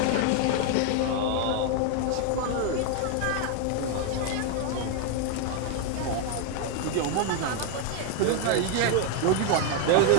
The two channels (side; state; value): both; different; correlation 0.01